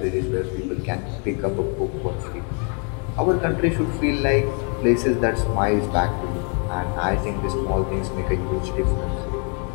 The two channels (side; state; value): right; quieter; 38.9 dB